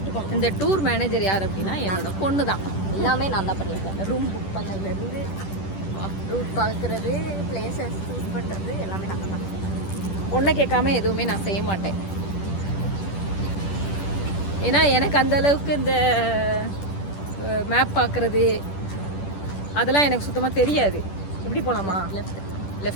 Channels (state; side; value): late; right; 10 ms